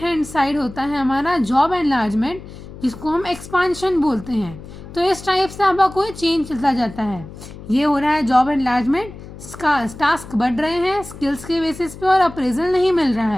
साइड होता है हमारा जॉब एनलार्जमेंट, जिसको हम एक्सपांशन बोलते हैं। तो इस टाइप से आपका कोई चेंज चलता जाता है। ये हो रहा है जॉब एनलार्जमेंट, टास्क बढ़ रहे हैं स्किल्स के बेसिस पे और अप्रेजल नहीं मिल रहा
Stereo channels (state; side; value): noise; left; hum, 15 dB below the sound